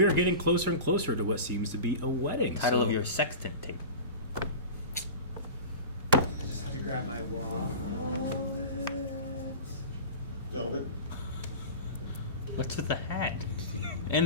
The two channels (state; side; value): inverted; both; correlation -0.32